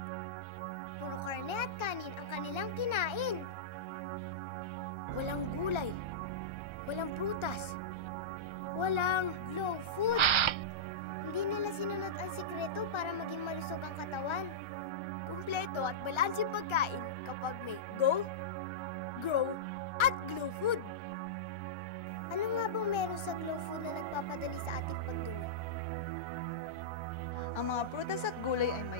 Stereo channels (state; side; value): late; right; 1.3 ms